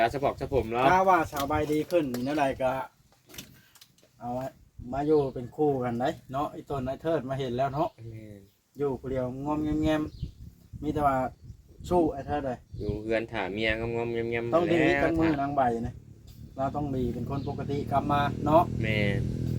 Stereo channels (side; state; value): both; identical; correlation 1.00